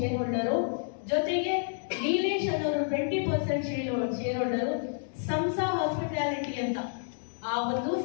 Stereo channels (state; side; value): silent; right; digital silence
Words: ಹೋಲ್ಡರು, ಜೊತೆಗೆ ನೀಲೇಶ್ ಅನ್ನೋರು 20% ಶೇರ್ ಹೋಲ್ಡರು. ಸಂಸಾ ಹಾಸ್ಪಿಟಾಲಿಟಿ ಅಂತ ಆ ಒಂದು